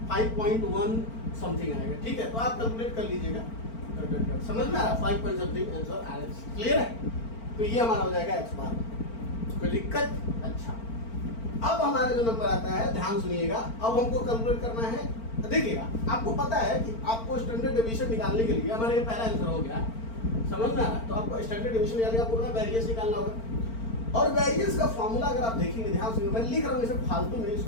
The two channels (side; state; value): right; late; 4.4 ms